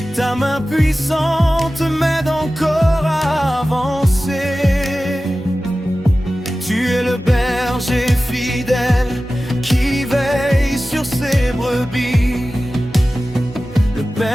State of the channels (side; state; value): both; normal; correlation 0.95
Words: ta main puissante m'aide encore à avancer. Tu es le berger fidèle qui veille sur ses brebis, le